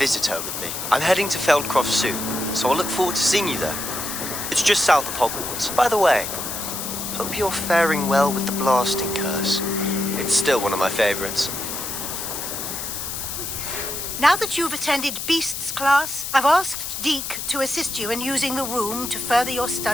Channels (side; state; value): left; noise; hiss, 5 dB below the sound